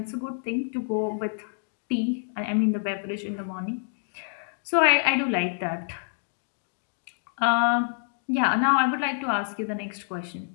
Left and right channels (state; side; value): silent; right; digital silence